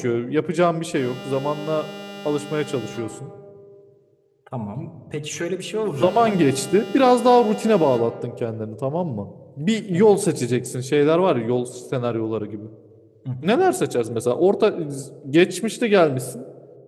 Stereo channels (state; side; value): identical; both; correlation 1.00